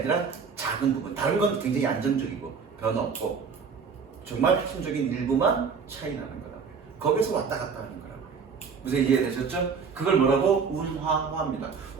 작은 부분. 다른 건 굉장히 안정적이고 변화 없고 정말 핵심적인 일부만 차이 나는 거다. 거기서 왔다 갔다 하는 거라고. 무슨 이해되셨죠? 그걸 뭐라고? 운하화입니다.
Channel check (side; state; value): left; quieter; 5.7 dB